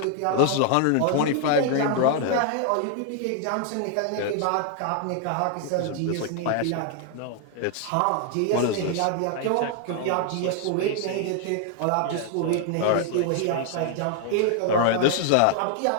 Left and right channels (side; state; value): both; different; correlation 0.00